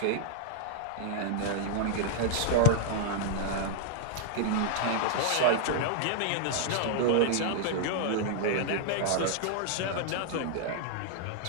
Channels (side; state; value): both; different; correlation 0.00